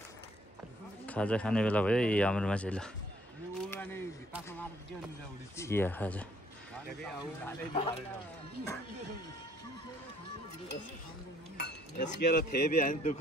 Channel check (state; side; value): normal; both; correlation 0.64